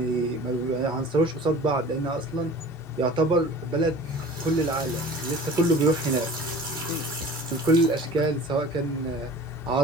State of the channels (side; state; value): both; normal; correlation 0.42